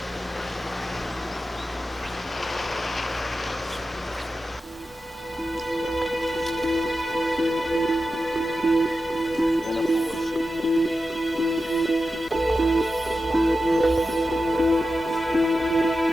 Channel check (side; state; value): both; normal; correlation 0.92